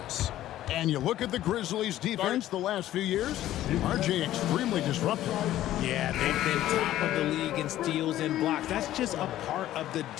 And you look at the Grizzlies' defense the last few years, RJ extremely disruptive. Yeah, they've been top of the league in steals and blocks. That's just a part of the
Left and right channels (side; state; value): right; quieter; 13.6 dB